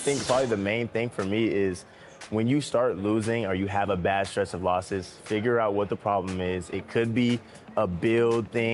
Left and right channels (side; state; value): both; identical; correlation 1.00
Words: probably the main thing for me is when you start losing or you have a bad stretch of losses, figure out what the problem is. It could be a build